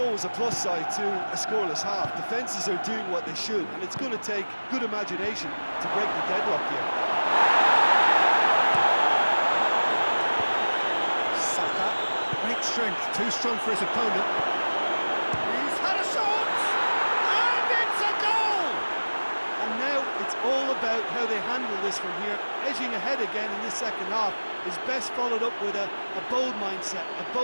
a plus side to a scoreless half. Defences are doing what they should, and it's going to take good imagination to break the deadlock here. Saka, great strength, too strong for his opponent. He's had a shot! And it's a goal! And now it's all about how they handle this from here. Edging ahead again in this second half is best followed up with a bold mindset, a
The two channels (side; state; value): both; inverted; correlation -1.00